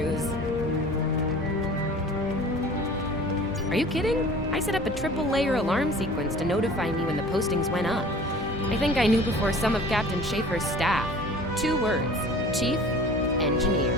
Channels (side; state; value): both; normal; correlation 0.44